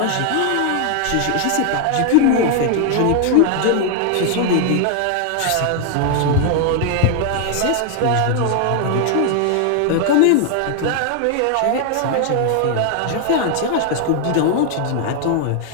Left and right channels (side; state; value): both; different; correlation 0.00